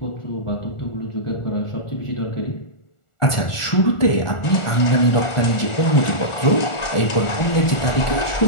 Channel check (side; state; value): right; late; 1.4 ms